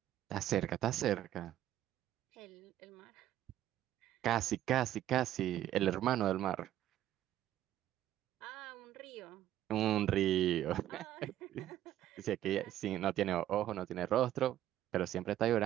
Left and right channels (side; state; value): left; quieter; 12.6 dB